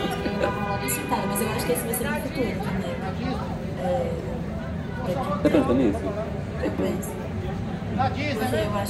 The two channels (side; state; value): both; identical; correlation 1.00